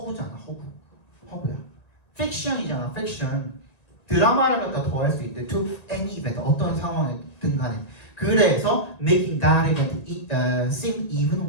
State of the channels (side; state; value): right; late; 1.9 ms